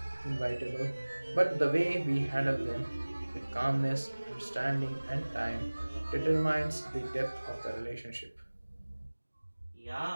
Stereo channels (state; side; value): inverted; both; correlation -1.00